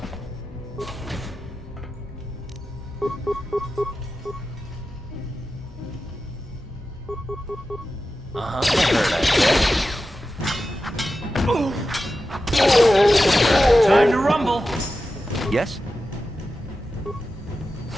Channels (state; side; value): normal; both; correlation 0.92